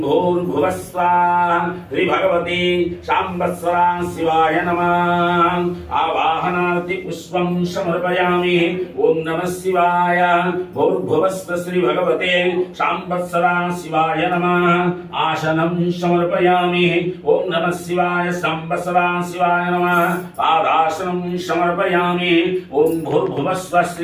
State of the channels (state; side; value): identical; both; correlation 1.00